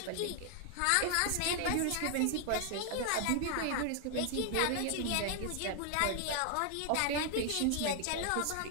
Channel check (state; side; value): different; both; correlation 0.00